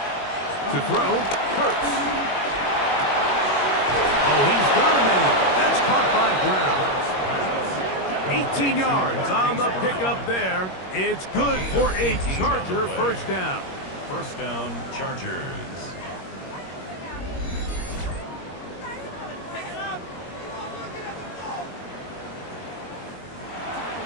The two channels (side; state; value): right; late; 21 ms